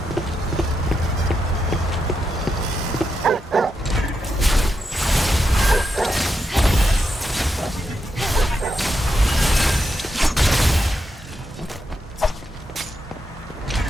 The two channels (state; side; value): normal; both; correlation 0.84